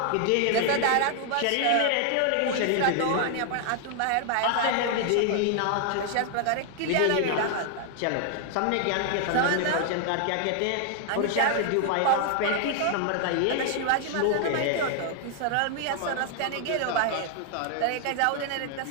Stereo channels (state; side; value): different; both; correlation 0.00